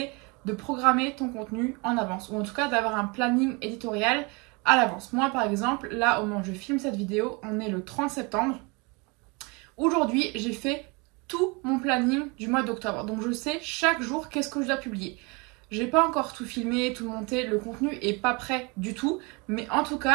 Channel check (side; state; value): left; quieter; 29.0 dB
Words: de programmer ton contenu en avance, ou en tout cas d'avoir un planning éditorial à l'avance. Moi par exemple, là au moment où je filme cette vidéo, on est le 30 septembre. Aujourd'hui, j'ai fait tout mon planning du mois d'octobre. Donc je sais chaque jour qu'est-ce que je dois publier. J'ai pas encore tout filmé, tout monté, le contenu est pas prêt du tout. Mais en tout